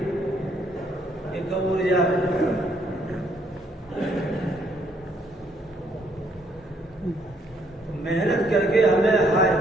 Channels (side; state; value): both; normal; correlation 0.69